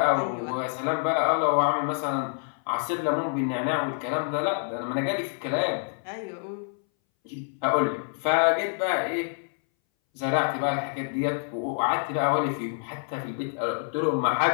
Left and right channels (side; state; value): right; silent; 60 dB below the other